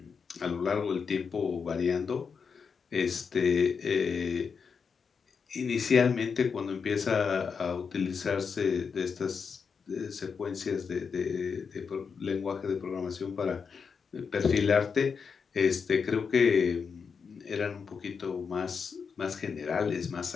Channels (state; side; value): quieter; right; 5.9 dB